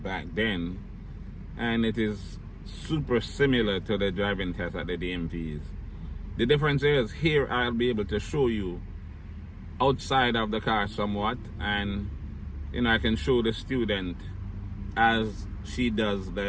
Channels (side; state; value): both; identical; correlation 1.00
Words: then, and it is super similar to the driving test at the DMVs. The difference is here I'll be able to show you outside of the car somewhat, and I can show the student as she does